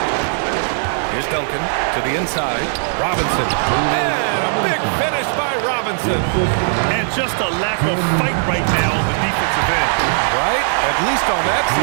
Here's Duncan to the inside. Robinson. And a big finish by Robinson. And just a lack of fight right now on the defensive end. Right? At least on that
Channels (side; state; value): left; silent; 65 dB below the other